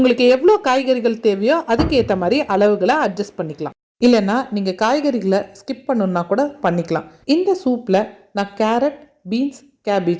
எவ்வளோ காய்கறிகள் தேவையோ அதுக்கு ஏற்ற மாதிரி அளவுகளை அட்ஜஸ்ட் பண்ணிக்கலாம். இல்லைன்னா நீங்கள் காய்கறிகளை ஸ்கிப் பண்ணணுன்னா கூட பண்ணிக்கலாம். இந்த சூப்பில் நான் கேரட், பீன்ஸ்,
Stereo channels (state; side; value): identical; both; correlation 1.00